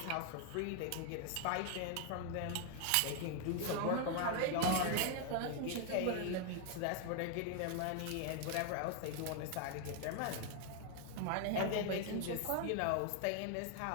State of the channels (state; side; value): different; both; correlation 0.00